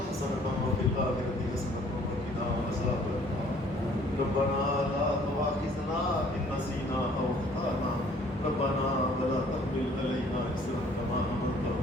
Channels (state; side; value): normal; both; correlation 0.57